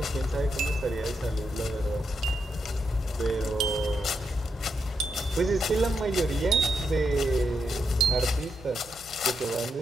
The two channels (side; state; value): both; normal; correlation 0.82